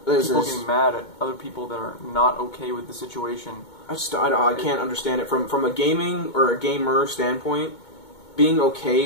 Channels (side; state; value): right; late; 2.2 ms